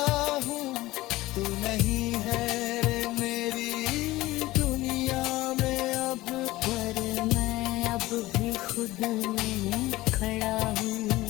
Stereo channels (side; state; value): right; quieter; 18.2 dB